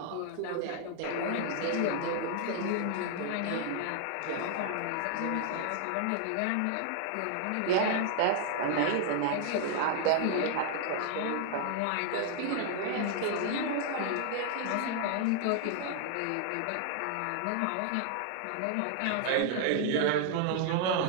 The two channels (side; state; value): both; different; correlation 0.00